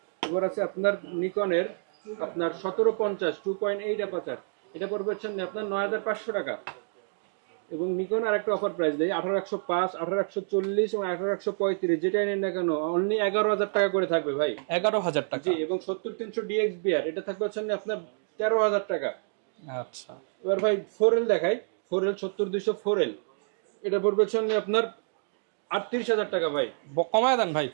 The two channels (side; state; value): left; silent; digital silence